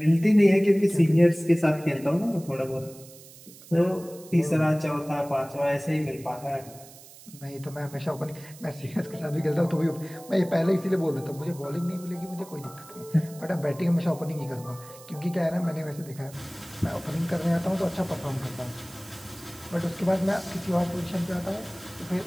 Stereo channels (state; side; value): noise; right; hiss, 20 dB below the sound